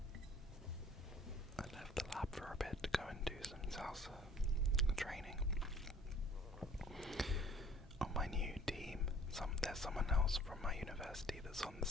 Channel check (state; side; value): normal; both; correlation 0.54